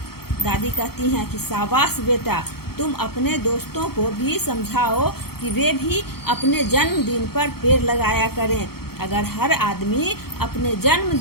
दादी कहती हैं कि शाबाश बेटा, तुम अपने दोस्तों को भी समझाओ कि वे भी अपने जन्मदिन पर पेड़ लगाया करें। अगर हर आदमी अपने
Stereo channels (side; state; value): right; late; 0.95 ms